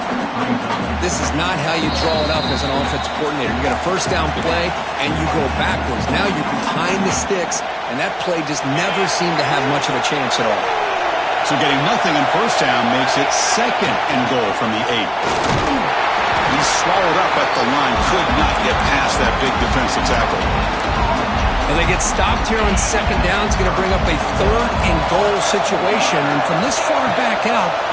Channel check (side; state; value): both; identical; correlation 1.00